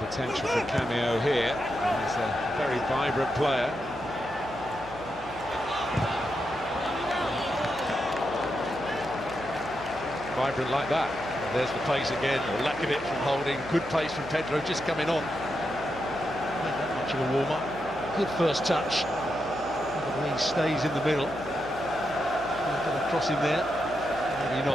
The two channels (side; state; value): left; noise; hum, 19 dB below the sound